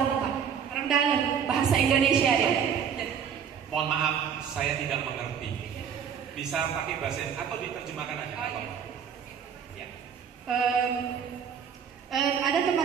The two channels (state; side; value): quieter; left; 7.7 dB